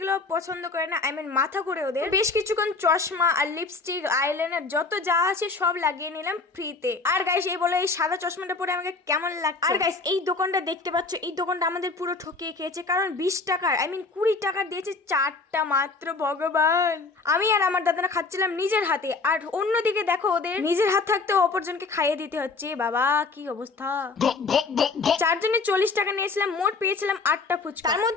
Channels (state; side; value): quieter; right; 4.0 dB